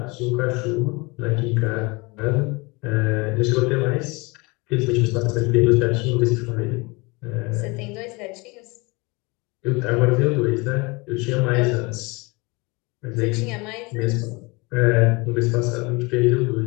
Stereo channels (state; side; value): quieter; right; 26.5 dB